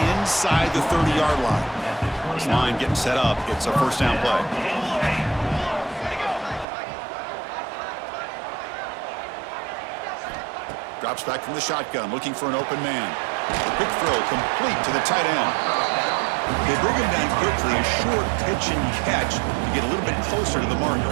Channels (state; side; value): drops out; left; at 6.7 s